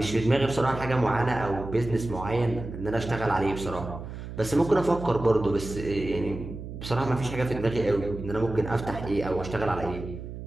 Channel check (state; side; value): noise; right; hum, 10 dB below the sound